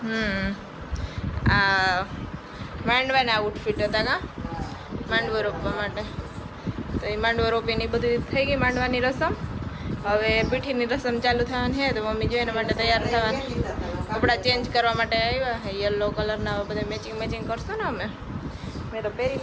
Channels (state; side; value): identical; both; correlation 1.00